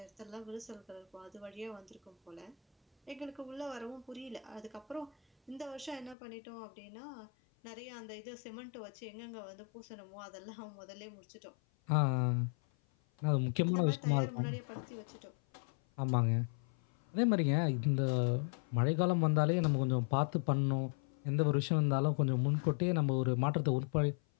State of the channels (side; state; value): right; drops out; at 6.2 s